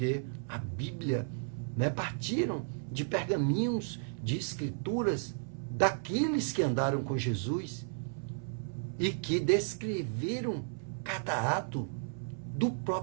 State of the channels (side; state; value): left; silent; 55 dB below the other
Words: a Bíblia, né, partiram de pergaminhos, de escrituras daqueles que andaram com Jesus e que descreveram cada ato do